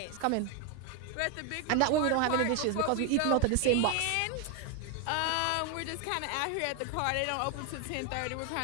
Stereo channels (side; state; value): both; different; correlation 0.01